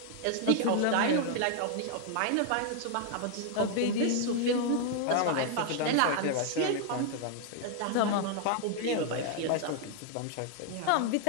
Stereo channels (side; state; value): both; different; correlation 0.00